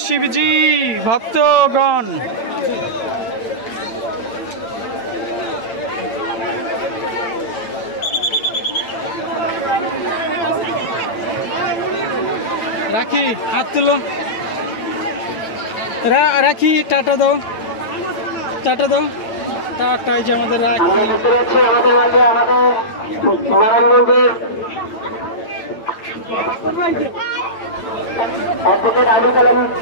শিবজি ভক্তগণ। রাখি হাত তুলো, রাখি টাটা দাও, টাটা দাও, টাটাই যে আমাদের রাখি। আমাদের মাঝে আমাদের নারায়ণগঞ্জের অ্যাডভোকেট আবুল কালাম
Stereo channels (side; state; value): right; late; 8.9 ms